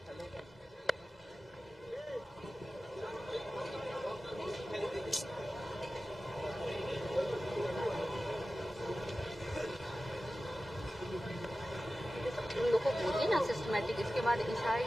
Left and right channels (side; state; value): both; normal; correlation 0.95